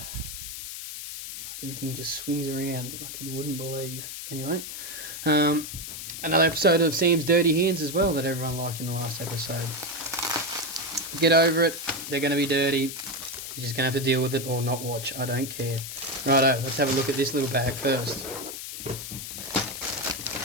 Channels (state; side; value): noise; left; hiss, 8 dB below the sound